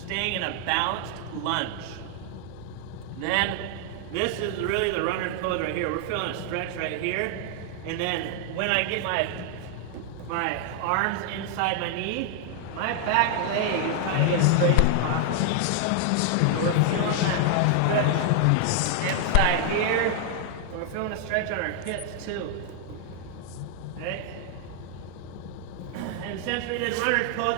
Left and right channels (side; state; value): both; different; correlation 0.00